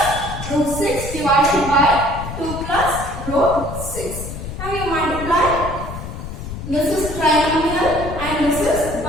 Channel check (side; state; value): left; noise; rumble, 8 dB below the sound